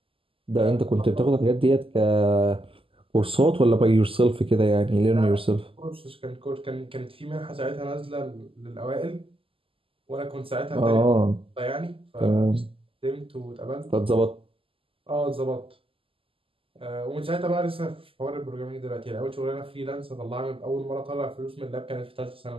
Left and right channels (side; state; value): left; late; 0.26 ms